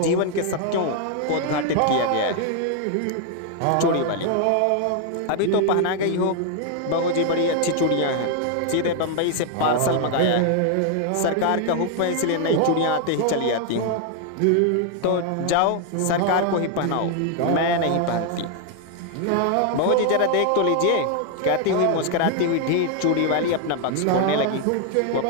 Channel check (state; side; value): different; both; correlation 0.00